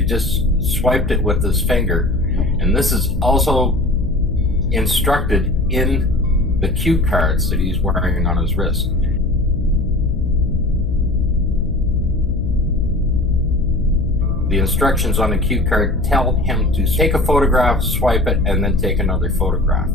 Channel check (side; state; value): left; noise; hum, 4 dB below the sound